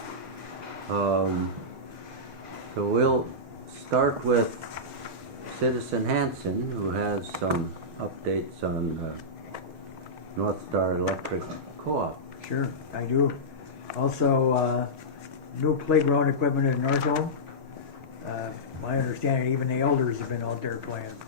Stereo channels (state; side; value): late; left; 6.4 ms